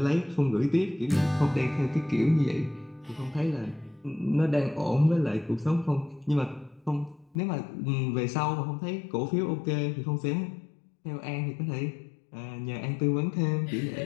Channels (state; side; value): drops out; right; at 7.4 s